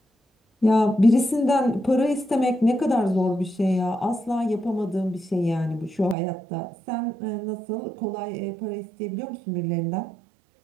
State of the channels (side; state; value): left; drops out; at 6.2 s